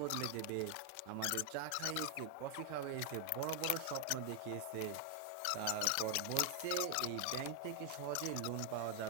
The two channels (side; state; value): both; different; correlation 0.00